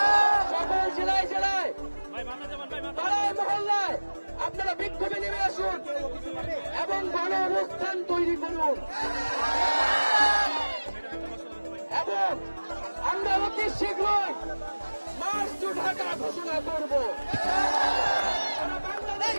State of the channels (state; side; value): inverted; both; correlation -1.00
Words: সকল জেলায় জেলায় পাড়ায় মহল্লায় আপনারা বিক্ষোভে নেমে আসুন এবং গণ অবস্থান তৈরি করুন এবং আমরা অতি শীঘ্রই মার্চ টু ঢাকা ঘোষণা করব।